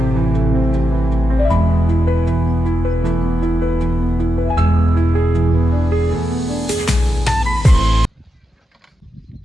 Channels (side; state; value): both; normal; correlation 0.87